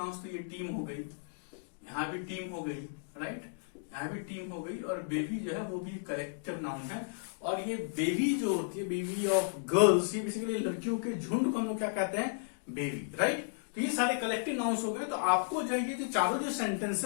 तो ये टीम हो गई, यहाँ भी टीम हो गई, राइट? यहाँ भी टीम हो गई, और बेबी जो है वो भी कलेक्टिव नाउन है। और ये बेबी जो होती है, बेबी ऑफ गर्ल्स, ये बेसिकली लड़कियों के झुंड को हम लोग क्या कहते हैं? Baby, right? तो ये सारे कलेक्टिव नाउन्स हो गए। तो आपको जो है ये चारों जो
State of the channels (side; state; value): right; silent; digital silence